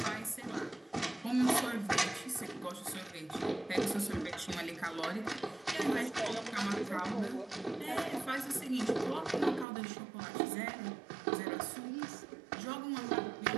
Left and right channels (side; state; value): left; drops out; at 9.7 s